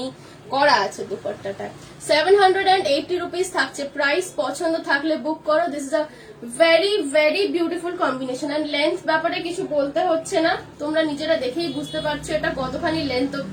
করা আছে দুপাট্টাটা। 780 রুপিস থাকছে প্রাইস। পছন্দ থাকলে বুক করো। This is a very very beautiful combination. And length ব্যাপারে কিছু বলতে হচ্ছে না, তোমরা নিজেরা দেখেই বুঝতে পারছো এটা কতখানি লেন্থ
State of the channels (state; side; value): identical; both; correlation 1.00